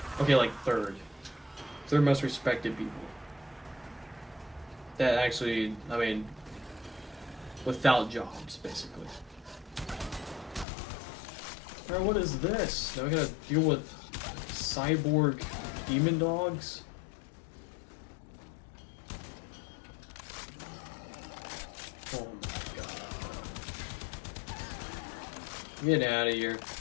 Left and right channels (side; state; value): right; drops out; at 10.7 s